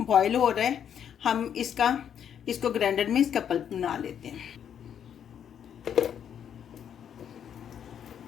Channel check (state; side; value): quieter; right; 8.8 dB